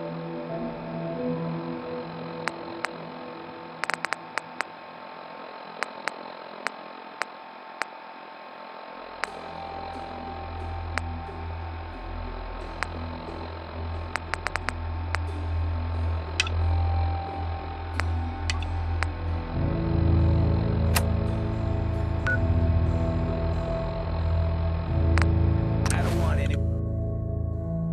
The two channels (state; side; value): identical; both; correlation 1.00